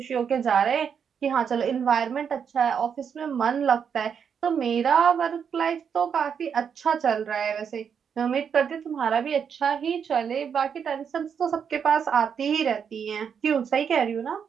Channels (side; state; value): left; quieter; 7.2 dB